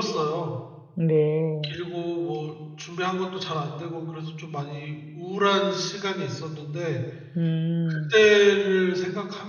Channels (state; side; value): identical; both; correlation 1.00